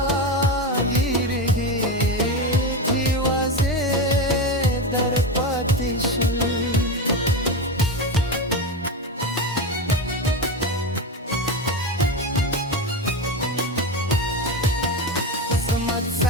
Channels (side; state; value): both; normal; correlation 0.18